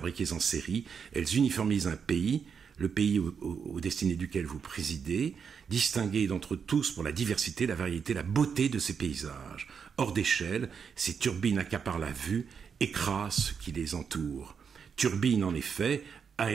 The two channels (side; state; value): left; quieter; 6.5 dB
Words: en série, elles uniformisent un pays, le pays aux destinées duquel vous présidez, distingué d'entre tous pour la diversité, la variété, la beauté de ces paysages. Hors d'échelle, ces turbines accaparent la vue, écrasent ce qui les entoure. Turbines, en effet,